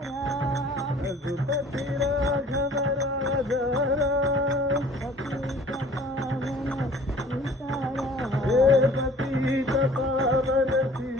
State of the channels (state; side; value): normal; both; correlation 0.50